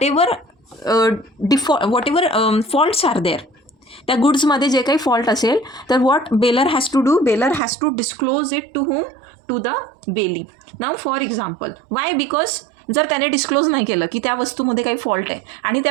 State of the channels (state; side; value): drops out; left; at 7.6 s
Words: whatever faults are there, त्या गुड्समध्ये जे काही फॉल्ट असेल तर what bailor has to do, bailor has to disclose it to whom, to the bailee. Now for example, why, because जर त्याने डिस्क्लोज नाही केलं की त्या वस्तूमध्ये काही फॉल्ट आहे आणि